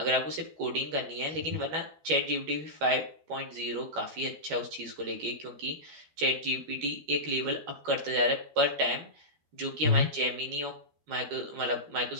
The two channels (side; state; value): left; late; 13 ms